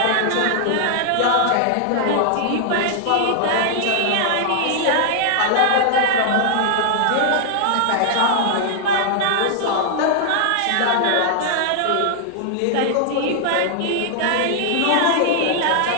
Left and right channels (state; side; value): different; both; correlation 0.00